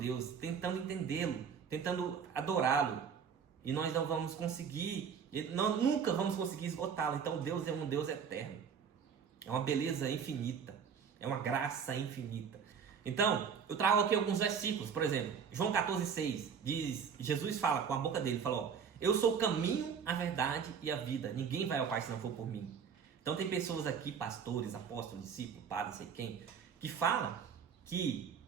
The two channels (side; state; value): left; quieter; 6.9 dB